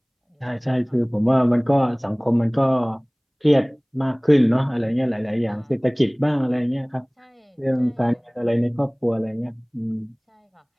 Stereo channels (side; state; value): both; identical; correlation 1.00